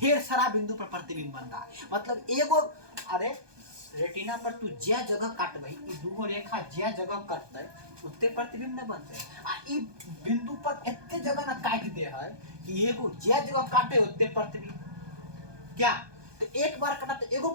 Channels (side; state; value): left; late; 1.2 ms